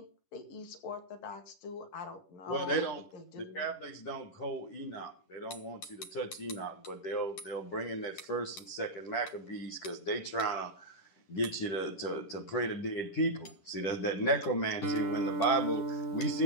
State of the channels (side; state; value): right; late; 11 ms